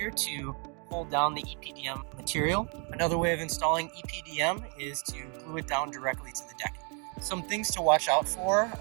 to hold down the EPDM material. Another way of installing EPDM is to glue it down directly to the decking. Some things to watch out for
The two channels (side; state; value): left; quieter; 37.8 dB